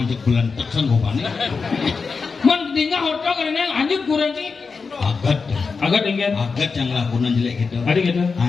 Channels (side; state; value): right; quieter; 4.8 dB